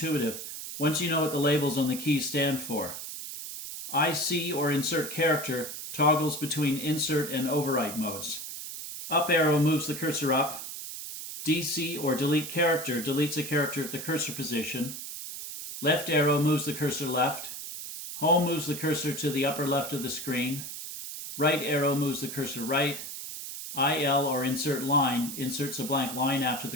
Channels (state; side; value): noise; right; hiss, 8 dB below the sound